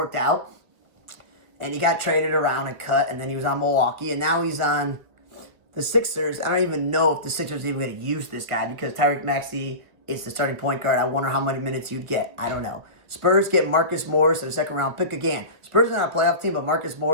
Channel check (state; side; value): late; left; 1.8 ms